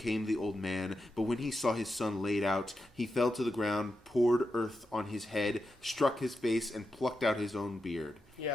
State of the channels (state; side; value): normal; both; correlation 0.87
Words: the old man, but when he saw his son laid out, he fell to the ground, poured earth on his head, struck his face, and plucked out his own beard.